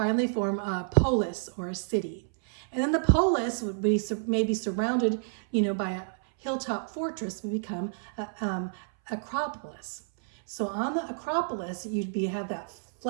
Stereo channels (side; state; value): left; silent; 58 dB below the other